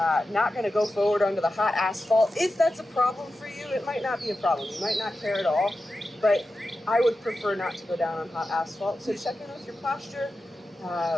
not going to go forward onto the hot asphalt. If that's a problem for you, it might not be a problem. You might not care at all, but I would prefer not to go down on hot asphalt. So check in with your posture,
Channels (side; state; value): both; normal; correlation 0.92